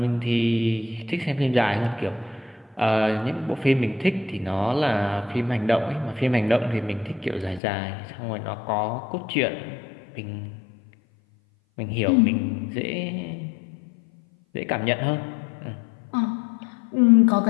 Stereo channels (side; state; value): right; drops out; at 7.6 s